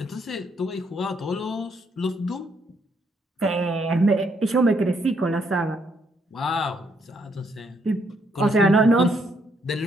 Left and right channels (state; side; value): normal; both; correlation 0.72